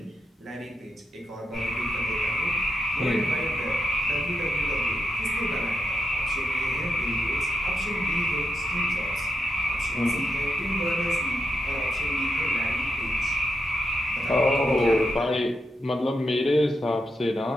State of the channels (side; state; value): both; normal; correlation 0.84